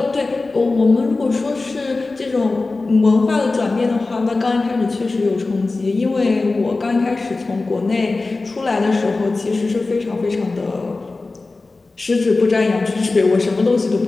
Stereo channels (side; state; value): right; quieter; 3.5 dB